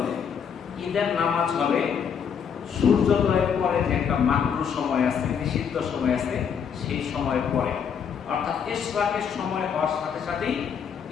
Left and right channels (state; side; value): quieter; right; 7.3 dB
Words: ঈদের নামাজ হবে সূর্যোদয়ের পরে, যে একটা মাকরুহ সময় আছে, নিষিদ্ধ সময় আছে, সেই সময়ের পরে, অর্থাৎ ইশরাকের সময় হওয়ার সাথে সাথেই